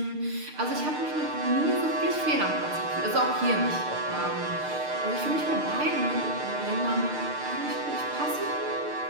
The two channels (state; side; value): late; left; 6.6 ms